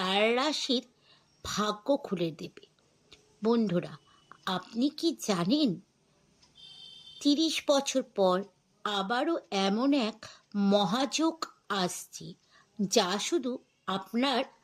রাশির ভাগ্য খুলে দেবে। বন্ধুরা, আপনি কি জানেন ৩০ বছর পর আবারও এমন এক মহাযোগ আসছে যা শুধু আপনার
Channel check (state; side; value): identical; both; correlation 1.00